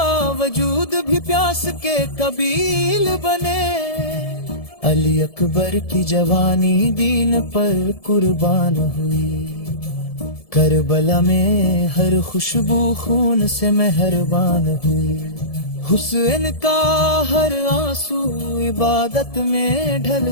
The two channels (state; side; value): late; right; 1.7 ms